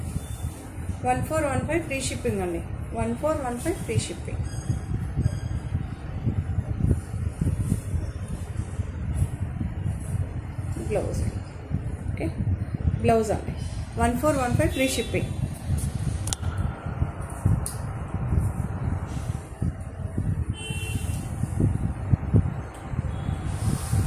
1415 ఫ్రీ షిప్పింగ్ అండి. 1415 free shipping. Blouse. Okay, blouse అండి. 1415 ఫ్రీ షిప్పింగ్.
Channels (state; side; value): identical; both; correlation 1.00